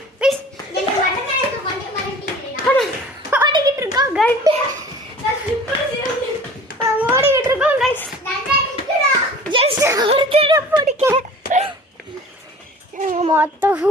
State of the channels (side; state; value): both; normal; correlation 0.44